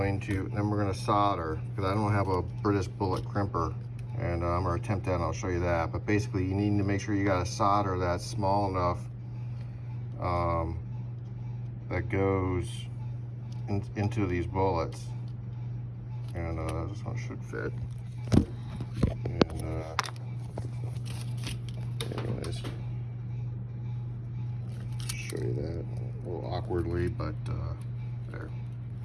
to solder, because I don't have a British bullet crimper, and I'm going to attempt that and I'll show you that. But basically you need to make sure you got a solder that's small enough that goes into these bullets. And this one should fit. And anyways, show you that a little awkwardly, but there.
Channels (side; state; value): both; identical; correlation 1.00